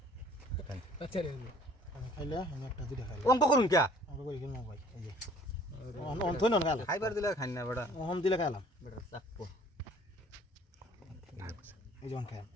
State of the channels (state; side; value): normal; both; correlation 0.54